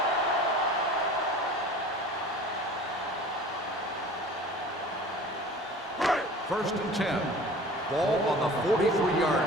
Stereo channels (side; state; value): both; normal; correlation 0.42